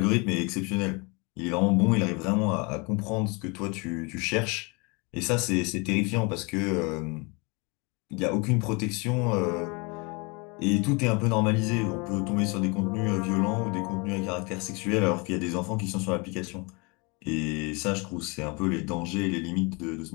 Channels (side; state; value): right; quieter; 29.6 dB